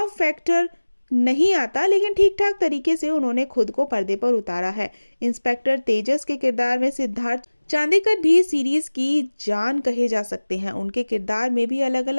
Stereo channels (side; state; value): both; inverted; correlation -1.00